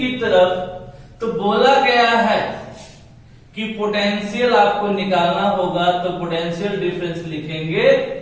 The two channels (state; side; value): identical; both; correlation 1.00